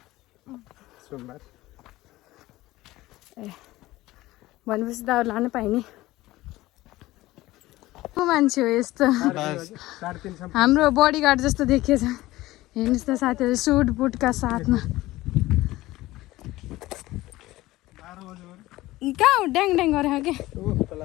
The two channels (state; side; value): quieter; right; 17.7 dB